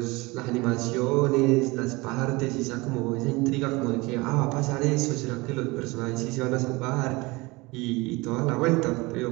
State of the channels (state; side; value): quieter; left; 23.6 dB